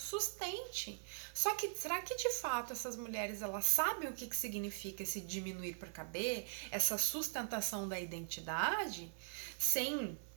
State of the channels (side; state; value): left; silent; 50 dB below the other